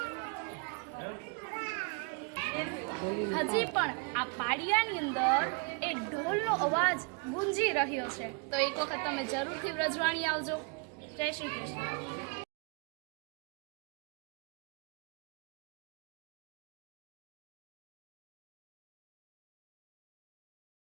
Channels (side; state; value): left; quieter; 35.1 dB